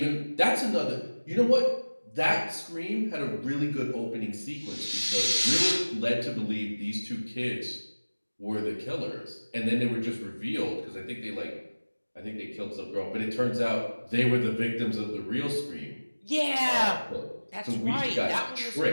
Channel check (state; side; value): inverted; both; correlation -1.00